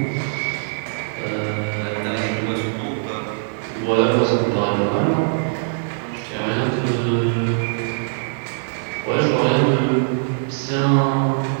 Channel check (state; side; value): silent; left; digital silence